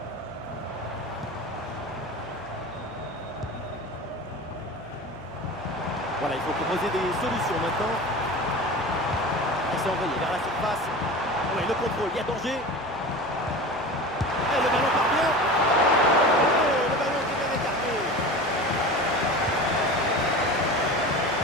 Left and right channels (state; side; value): noise; left; hum, 25 dB below the sound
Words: Voilà, il faut proposer des solutions maintenant. Il s'est envoyé vers la surface. Oui, le contrôle, il y a danger. Et le ballon part bien. Oh, le ballon qui est bien écarté.